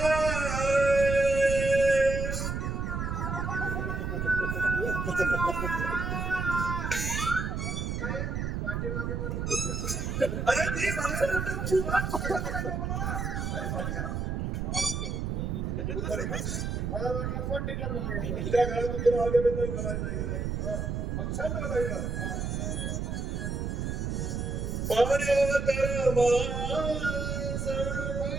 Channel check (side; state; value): right; noise; rumble, 2 dB below the sound